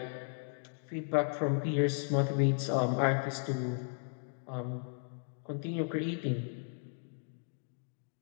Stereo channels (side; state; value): right; silent; digital silence